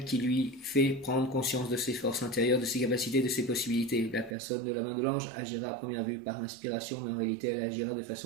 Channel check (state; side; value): drops out; left; at 4.4 s